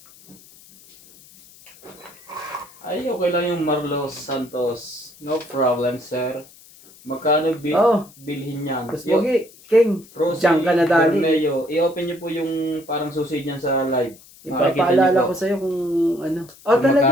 Ay, okay lang yung Marlos Santos. No problem, sir. Magkano Oh. bilhin niyan? Mas pogi, King. Rosie Diyan ka na dali. Bermeo. I-open niyo po yung parang susi niyan sa live. Ipapaalala ko sa'yo kung ano. Oh,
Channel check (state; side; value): noise; left; hiss, 24 dB below the sound